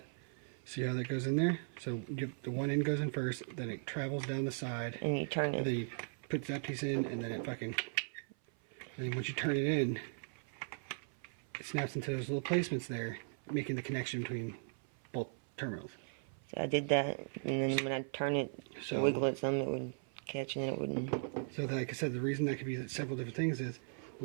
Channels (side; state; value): left; silent; 52 dB below the other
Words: see how that goes in there? So the one end goes in first, then it travels down the side, And you turn and it. then you put that piece in, and then it fucking, and then once you turn it in, it snaps into those little placements there, making the connection between both terminals. So I did that, and then when I turn it, So- wiggle it some, it would catch, and then it wouldn't. So like I said, the reason that could be several different things is,